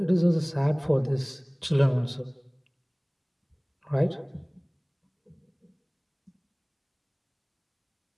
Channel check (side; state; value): both; identical; correlation 1.00